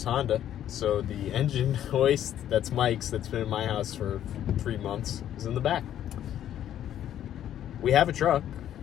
Honda. So the engine hoist, that's Mike's, that's been in my house for 3 months, is in the back. We have a truck.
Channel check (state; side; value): quieter; right; 11.0 dB